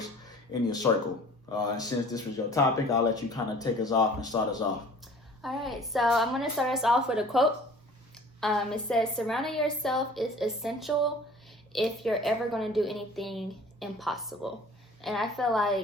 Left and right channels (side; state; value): both; normal; correlation 0.48